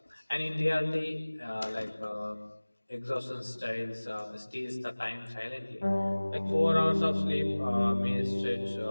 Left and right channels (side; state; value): both; inverted; correlation -1.00